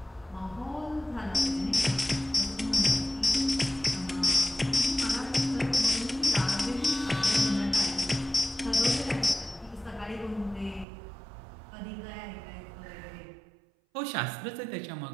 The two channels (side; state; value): left; drops out; at 10.9 s